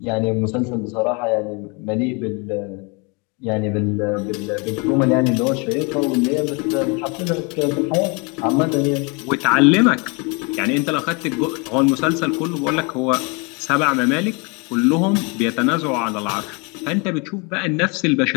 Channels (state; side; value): quieter; right; 31.1 dB